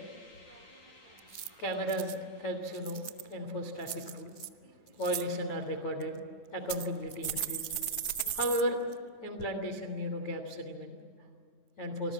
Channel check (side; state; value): right; late; 9.4 ms